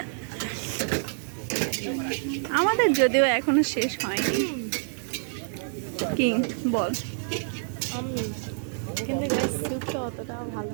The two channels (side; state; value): left; silent; 59 dB below the other